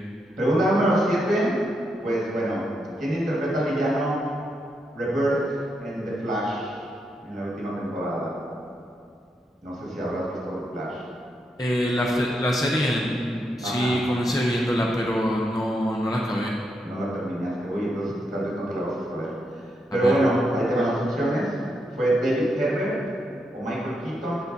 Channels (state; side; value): normal; both; correlation 0.82